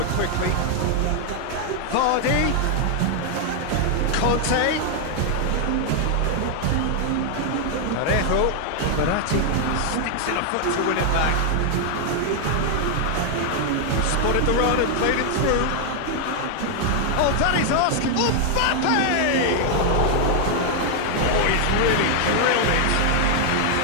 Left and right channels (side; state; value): both; different; correlation 0.00